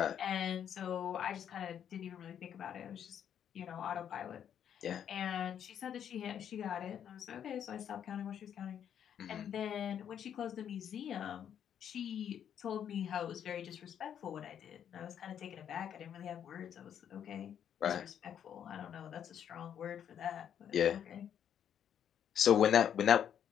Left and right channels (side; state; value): right; quieter; 9.1 dB